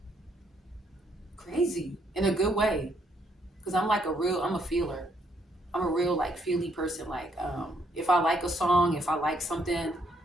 crazy in a good way. Cause I'm a feeler. I'm a real like feely person. Like if I like a song, if I like something,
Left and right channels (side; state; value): both; normal; correlation 0.71